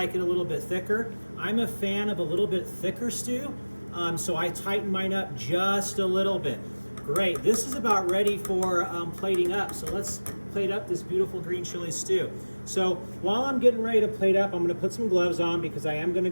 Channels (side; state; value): both; inverted; correlation -1.00